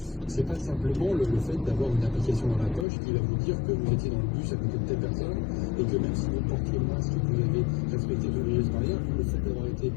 C'est pas simplement le fait d'avoir une application dans la poche qui va vous dire que vous étiez dans le bus à côté de telle personne et que même si vous portiez le masque et que vous avez respecté toutes les gestes barrières, le fait d'avoir été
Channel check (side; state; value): right; drops out; at 2.9 s